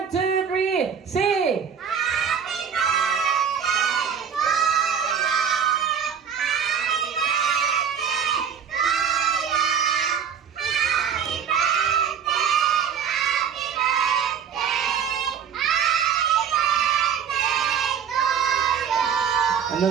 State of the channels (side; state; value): left; quieter; 7.5 dB